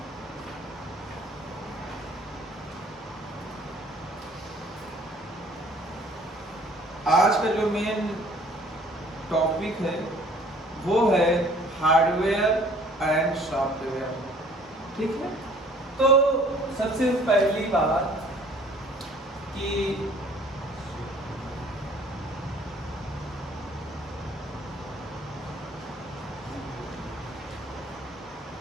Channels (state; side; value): normal; both; correlation 0.55